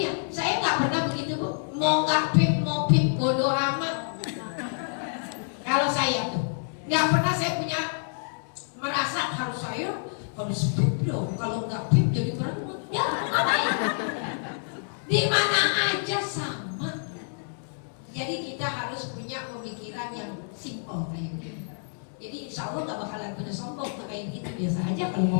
saya nggak pernah begitu Bu. Mau nggak pip, mau pip, bodoh amat. Kalau saya tuh nggak pernah saya punya merasa harus pip dong. Kalau nggak pip jadi perempuan. Ya ngapain? Di mana aja sama. Jadi kita harus punya pemikiran yang simple kayak gitu. Jadi insya Allah nggak bakalan punya sombong tuh kayak gitu, biasa aja kalau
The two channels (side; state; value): right; silent; digital silence